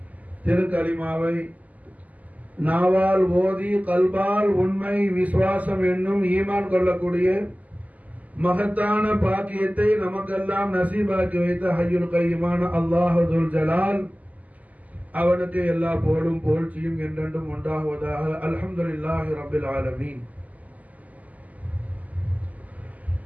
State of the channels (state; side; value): late; left; 0.076 ms